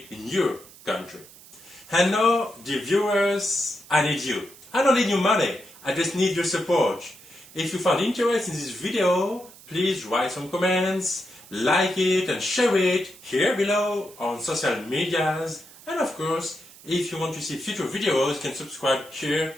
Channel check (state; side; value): noise; right; hiss, 21 dB below the sound